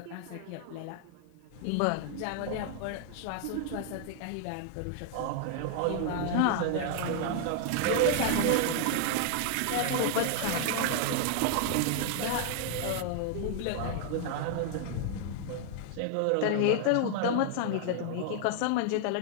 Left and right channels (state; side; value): different; both; correlation 0.00